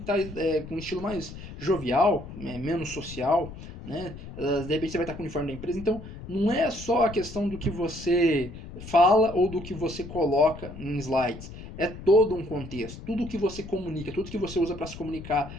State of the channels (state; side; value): noise; left; rumble, 13 dB below the sound